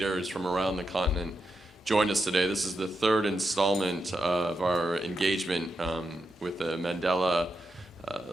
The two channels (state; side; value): normal; both; correlation 0.86